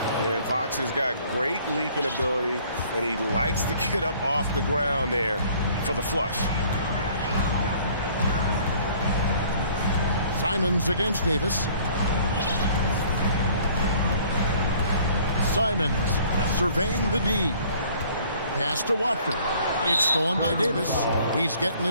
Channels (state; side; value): inverted; both; correlation -0.56